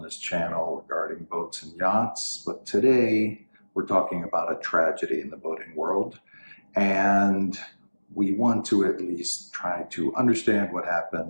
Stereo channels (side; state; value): both; inverted; correlation -1.00